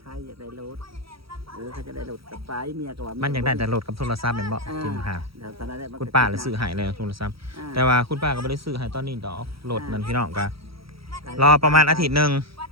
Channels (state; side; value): late; left; 0.75 ms